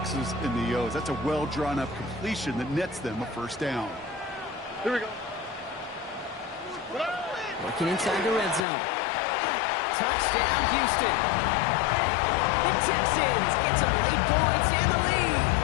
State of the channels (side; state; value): right; drops out; at 8.7 s